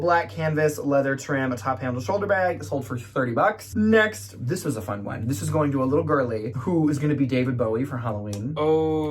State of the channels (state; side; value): identical; both; correlation 1.00